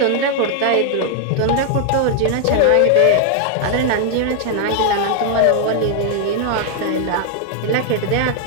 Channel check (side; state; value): both; different; correlation 0.00